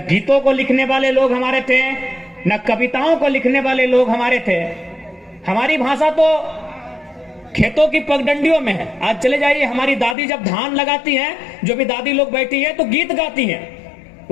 गीतों को लिखने वाले लोग हमारे थे, न कविताओं को लिखने वाले लोग हमारे थे। हमारी भाषा तो खेतों की पगडंडियों में है। आज चले जाइए, हमारी दादी जब धान लगाती हैं, जो भी दादी लोग बैठी है तो गीत गाती हैं,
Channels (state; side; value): drops out; right; at 10.2 s